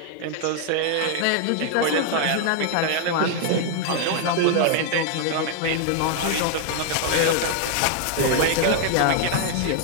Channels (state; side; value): different; both; correlation 0.00